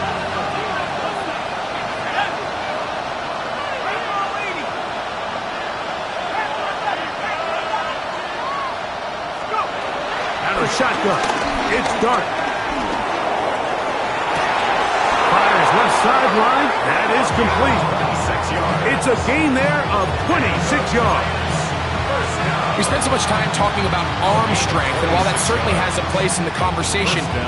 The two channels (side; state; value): both; identical; correlation 1.00